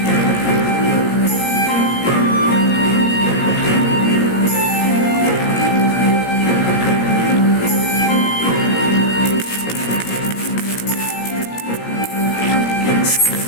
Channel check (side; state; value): right; late; 17 ms